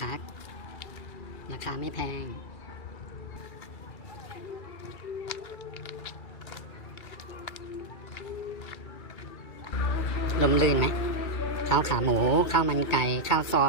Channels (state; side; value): late; right; 2.3 ms